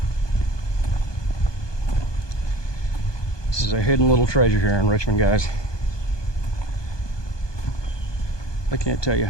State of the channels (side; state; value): right; late; 1.2 ms